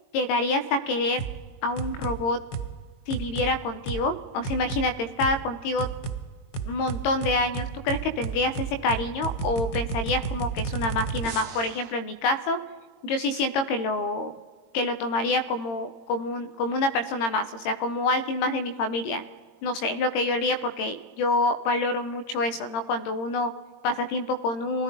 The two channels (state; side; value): late; right; 22 ms